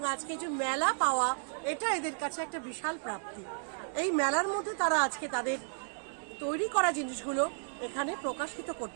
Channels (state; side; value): silent; left; 56 dB below the other